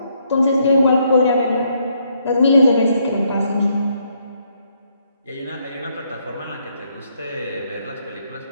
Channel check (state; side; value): inverted; both; correlation -0.73